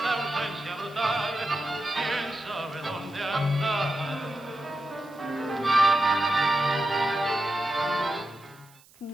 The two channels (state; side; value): noise; right; hiss, 27 dB below the sound